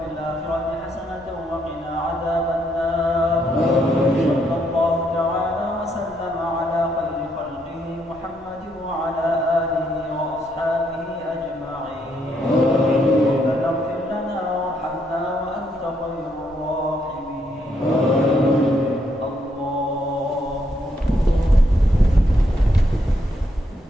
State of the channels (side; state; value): both; normal; correlation 0.75